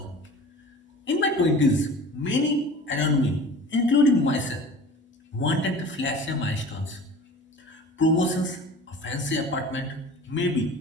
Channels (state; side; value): normal; both; correlation 0.40